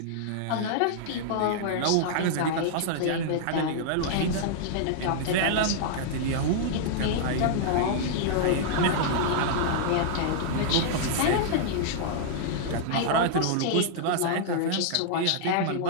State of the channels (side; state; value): both; different; correlation -0.01